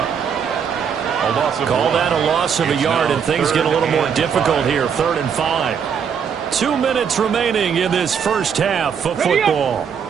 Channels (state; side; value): quieter; left; 7.2 dB